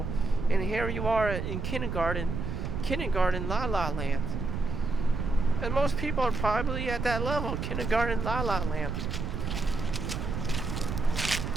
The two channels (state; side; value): noise; right; rumble, 3 dB below the sound